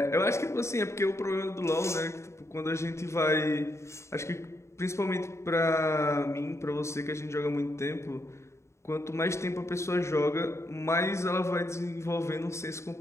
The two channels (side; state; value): right; late; 0.14 ms